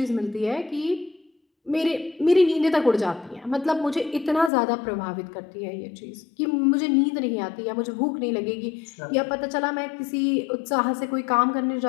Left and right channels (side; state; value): right; drops out; at 4.5 s